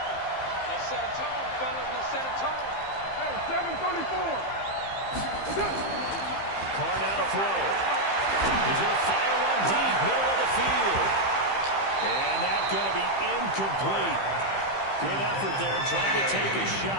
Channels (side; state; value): right; late; 15 ms